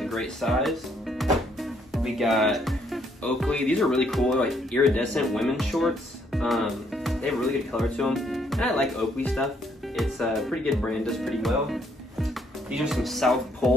great size. We got Oakley. These are really cool. They're like iridescent women's shorts. They have a really good color to them. And I like Oakley stuff. It's a pretty good brand, does pretty well. These are some South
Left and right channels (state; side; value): normal; both; correlation 0.69